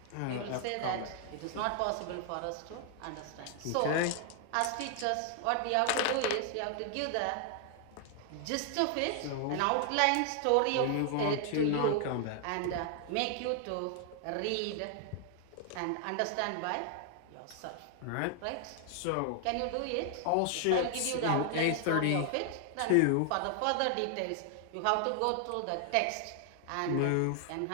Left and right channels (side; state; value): both; different; correlation 0.00